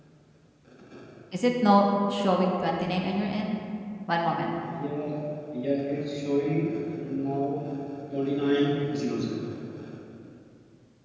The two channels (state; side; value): identical; both; correlation 1.00